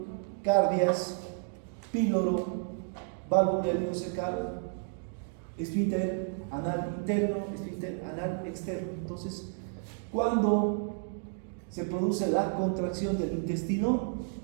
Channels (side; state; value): left; silent; 57 dB below the other